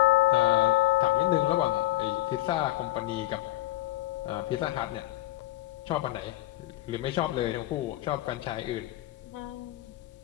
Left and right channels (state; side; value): quieter; right; 15.9 dB